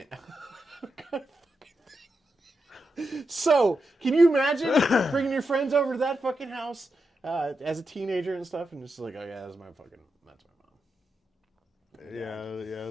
So, can you imagine bringing your friends over to that fucking house as a teenager and stuff, and just like, "Oh yeah, that's my mom."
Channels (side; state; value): both; normal; correlation 0.87